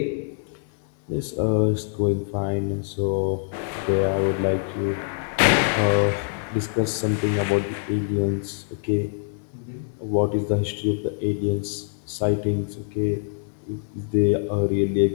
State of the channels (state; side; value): silent; right; digital silence